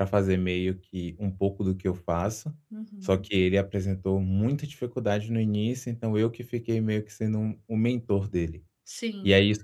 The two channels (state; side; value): identical; both; correlation 1.00